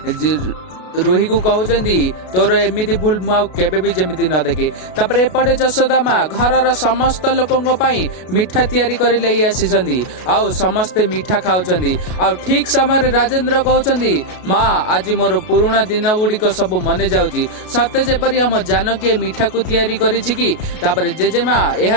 रोही को कहउछंदी तोर एमिति भूल मु केबे भी जेमिति न देखे। तापरे एपटे जशोदा माँ घरर समस्त लोकंग पई मिठा तयारी करि लई आसीछंदी आउ समस्ते मिठा खाउछंदी। आउ ठीक समय राजेंद्र कहउछंदी माँ आज मोर पुराना दिन गुड़िक सब मने जाउची सते जेपरि हम जानकी मिठा को तयारी करिछि कि। तापरे जेजेमा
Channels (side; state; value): right; late; 33 ms